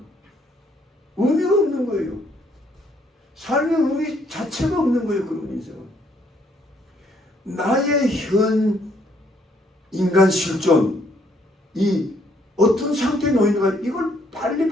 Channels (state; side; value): normal; both; correlation 0.68